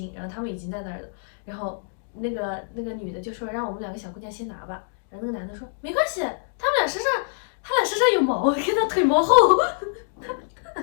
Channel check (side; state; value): right; silent; digital silence